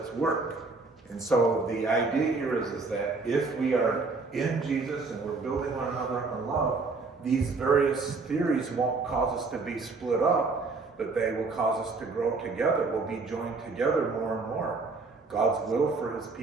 work. And so the idea here is that if we are in Jesus and we're building one another in love, these various theories won't cause us to be split up, but they will cause us to grow together. We'll be joined together more and more. God's will for his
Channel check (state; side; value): quieter; left; 4.0 dB